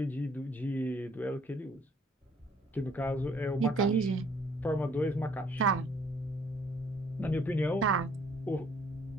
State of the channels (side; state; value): both; normal; correlation 0.61